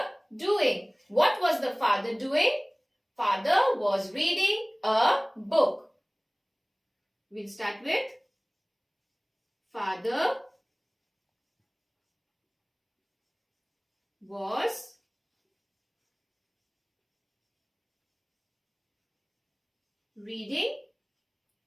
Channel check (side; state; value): both; identical; correlation 1.00